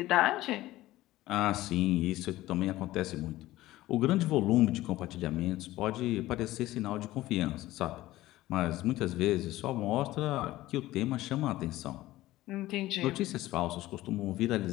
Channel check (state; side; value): quieter; right; 16.5 dB